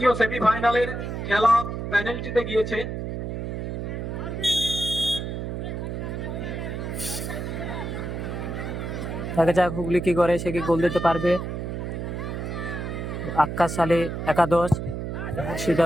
সেমিফাইনালের খেলা পেনাল্টিতে গিয়েছে। দেখা যাক হুগলি কি করে, সে কি গোল দিতে পারবে। আক্কাস আলী একাদশ,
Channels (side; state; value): right; noise; hum, 4 dB below the sound